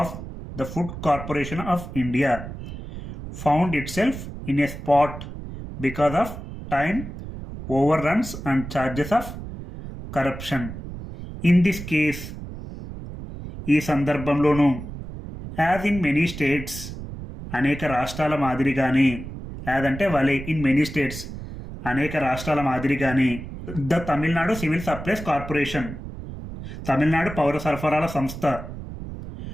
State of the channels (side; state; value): right; noise; rumble, 10 dB below the sound